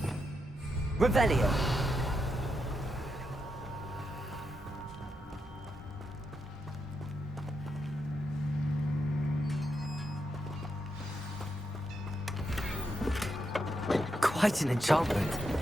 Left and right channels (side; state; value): both; normal; correlation 0.84